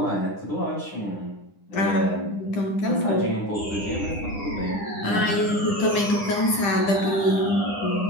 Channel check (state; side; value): late; right; 9.9 ms